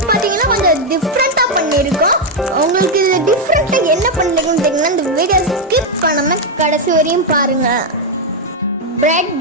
பாத்தீங்கன்னா கொஞ்சம் டிஃப்ரெண்டா பண்ணிருக்கோம். உங்களுக்கு இது டிஃப்ரெண்டா என்ன பண்ணிருக்குன்னு தெரியுங்கன்னா இந்த வீடியோ ஸ்கிப் பண்ணாம கடைசி வரையும் பாருங்க.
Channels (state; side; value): normal; both; correlation 0.02